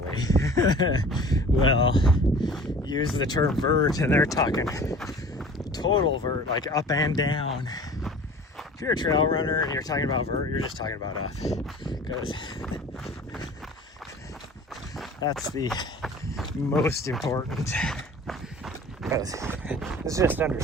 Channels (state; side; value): normal; both; correlation 0.43